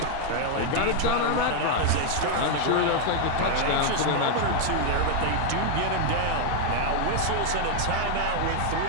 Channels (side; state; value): both; different; correlation 0.00